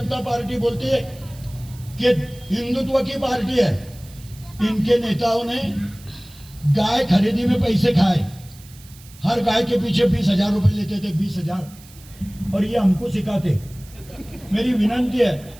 पार्टी बोलती है कि हिंदुत्व की पार्टी है। इनके नेताओं ने गाय खरीदी में पैसे खाए, हर गाय के पीछे 20,000 रुपए लेते थे, 20,000। और ये हमको सिखाते। मेरी विनंती है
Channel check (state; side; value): noise; right; hiss, 22 dB below the sound